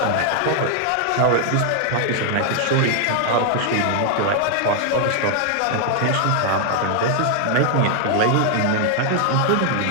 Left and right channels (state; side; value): different; both; correlation 0.00